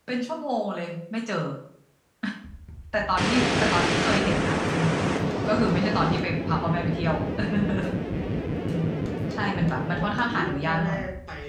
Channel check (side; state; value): both; identical; correlation 1.00